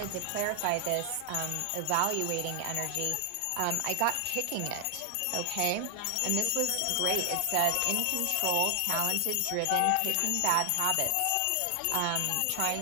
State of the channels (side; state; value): both; different; correlation 0.00